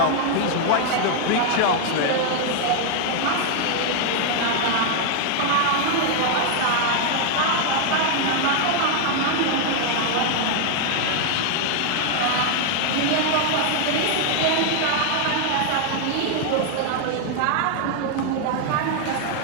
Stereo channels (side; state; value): both; different; correlation 0.00